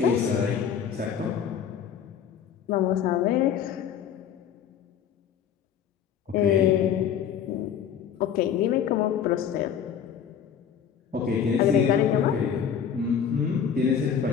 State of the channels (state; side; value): quieter; right; 8.2 dB